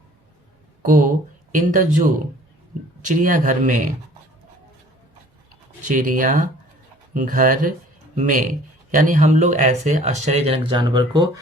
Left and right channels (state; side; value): normal; both; correlation 0.52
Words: को इन द जू, चिड़ियाघर में, यानी हम लोग ऐसे आश्चर्यजनक जानवर को